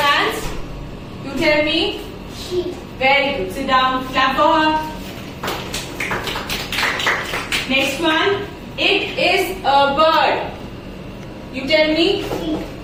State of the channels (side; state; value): both; identical; correlation 1.00